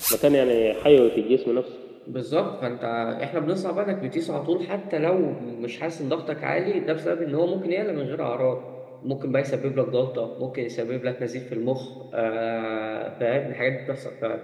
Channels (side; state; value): both; identical; correlation 1.00